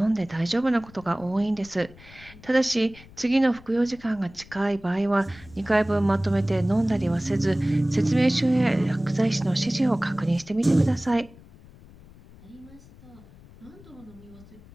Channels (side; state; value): left; noise; rumble, 22 dB below the sound